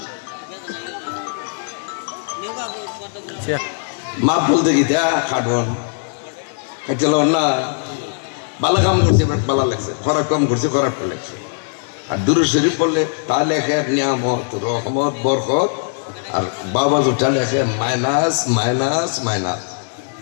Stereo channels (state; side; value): silent; right; digital silence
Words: মাফ বলতে কি তা খাটন খাইছিল না, ভালো কাম করছে ভালো লাগছে, খারাপ কাম করছে খারাপ লাগছে। আর দুরূদ শরীফ পড়লে তা লেখে নিয়ামত রহমত বরকত, আর বাবা জোটা লেখে মাইনাস মাইনাস মাইনাস।